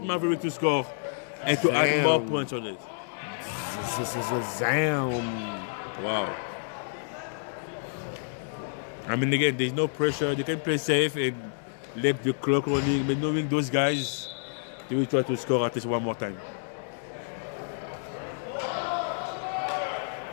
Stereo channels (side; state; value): right; silent; digital silence